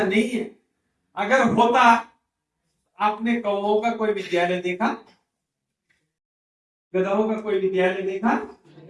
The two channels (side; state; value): both; identical; correlation 1.00